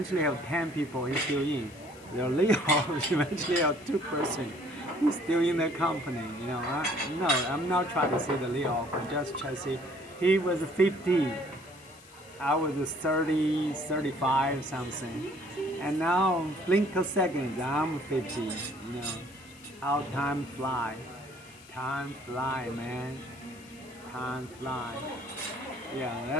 have 10 people. He's still in. They're lay off. Eventually have 2 person. He's still in the company. You know, no, I'm not trying to say the lay off. I'm just trying to say he was 50. I was 30, 35 something. And now, blink of seconds, I'm 50. You know, how time fly. Time fly, man. Time fly. Yeah,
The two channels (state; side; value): noise; left; hiss, 23 dB below the sound